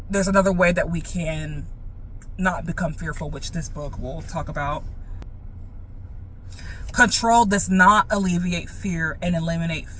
there's another way that we can not become fearful, which this book will talk about. Control does not alleviate fear and eliminate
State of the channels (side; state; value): both; identical; correlation 1.00